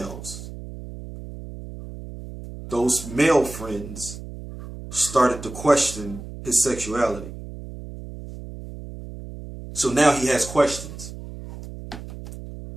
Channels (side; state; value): right; noise; hum, 12 dB below the sound